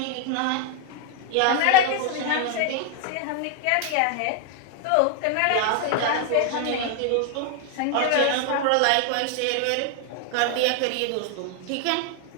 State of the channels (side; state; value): both; different; correlation 0.00